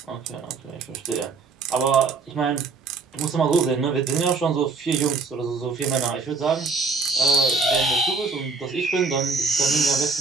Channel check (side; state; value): left; quieter; 4.4 dB